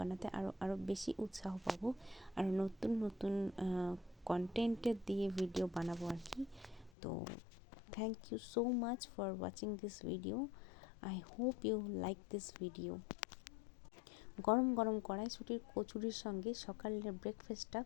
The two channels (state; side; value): drops out; right; at 6.9 s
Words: আরও বেশি উৎসাহ পাবো, আর নতুন নতুন কন্টেন্টের দিয়ে ভিডিও বানাবো আর কি। তো thank you so much for watching this video. I hope you like this video. গরম গরম কড়াইশুঁটির কচুরির সঙ্গে সকালের ব্রেকফাস্টটা